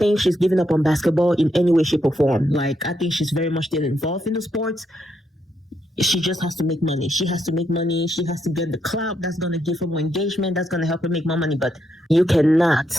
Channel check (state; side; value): normal; both; correlation 0.79